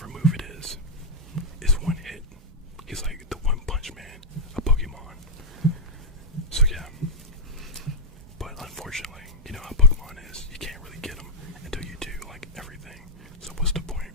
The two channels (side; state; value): both; normal; correlation -0.04